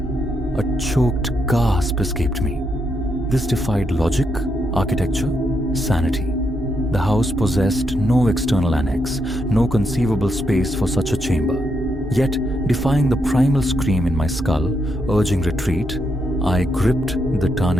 A choked gasp escaped me. This defied logic, architecture, sanity. The house possessed no external annex, no conceivable space for such a chamber. Yet, defying the primal scream in my skull, urging retreat, I gripped the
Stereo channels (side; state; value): both; normal; correlation 0.80